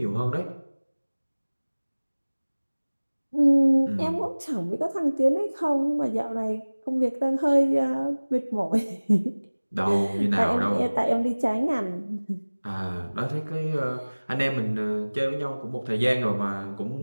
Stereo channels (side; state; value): both; inverted; correlation -1.00